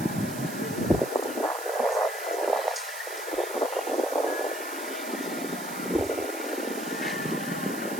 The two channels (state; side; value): noise; right; hiss, 10 dB below the sound